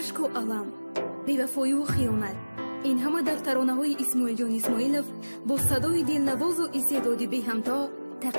و علم، بی‌وفایی و خیانت، این همه در ترانه‌های اسماعیل جان اسماعیلов با صدای دلنواز و استعداد بی همتا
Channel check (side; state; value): both; inverted; correlation -1.00